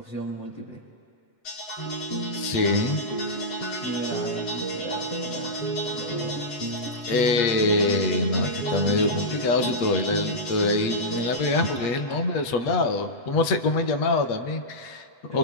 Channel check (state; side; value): late; right; 8.0 ms